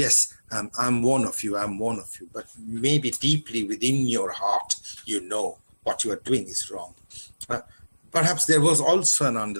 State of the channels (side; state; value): both; inverted; correlation -1.00